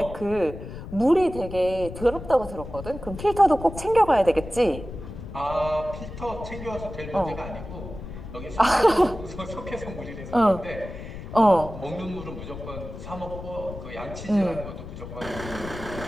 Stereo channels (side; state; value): left; noise; rumble, 11 dB below the sound